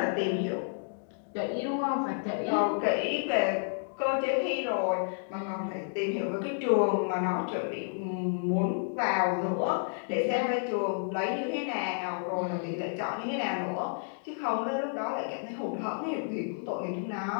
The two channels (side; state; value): right; silent; digital silence